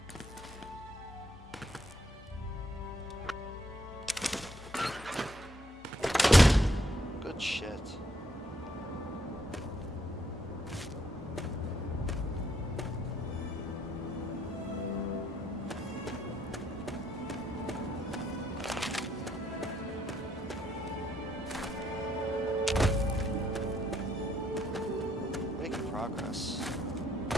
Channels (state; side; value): normal; both; correlation 0.72